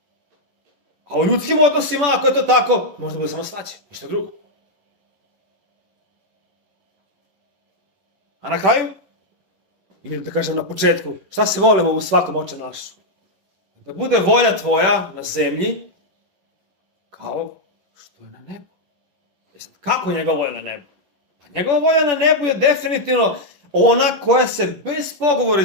A u ljudskim odnosima, ako je to tako, može da bude samo svađa, ništa drugo. A na kraju, ili da kažem na početku, šta se volimo u svakom oče našu? Da bude volja tvoja na zemlji kao što je na nebu. Kako njegova volja na nebu? Pa njegova volja na nebu je definitivno ona koja se bez pogovora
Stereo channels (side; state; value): left; late; 10 ms